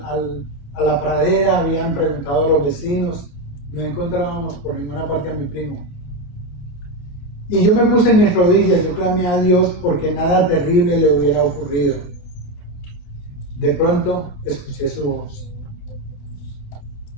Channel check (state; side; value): late; right; 28 ms